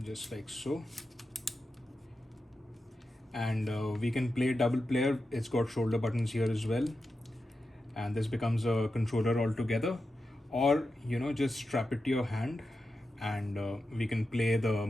Just like so. And we can play double player. It's got shoulder buttons here as well, and this becomes a controller altogether. Or just strap it to your hand, and we can play the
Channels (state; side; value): normal; both; correlation 0.90